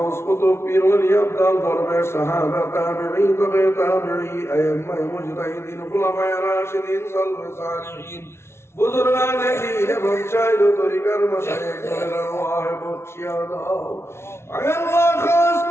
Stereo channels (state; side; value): late; right; 0.12 ms